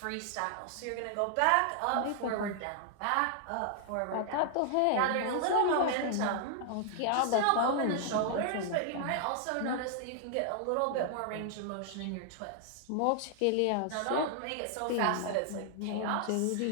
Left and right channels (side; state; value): both; different; correlation 0.00